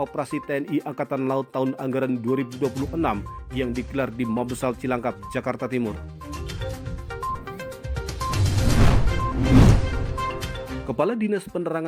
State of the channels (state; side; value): identical; both; correlation 1.00